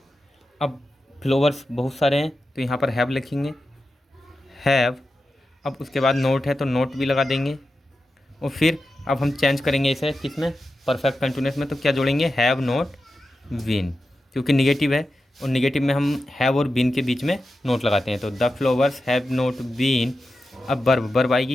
अब फ्लावर्स बहुत सारे हैं तो यहाँ पर हैव लिखेंगे, हैव। अब उसके बाद नोट है तो नोट भी लगा देंगे, और फिर अब हम चेंज करेंगे इसे किस में, परफेक्ट कंटिन्यूस में। तो क्या जोड़ेंगे, हैव नोट बीन, क्योंकि निगेटिव है और निगेटिव में हम हैव और बीन के बीच में नोट लगाते हैं। तो the flowers have not been. अब वर्ब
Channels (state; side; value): normal; both; correlation 0.91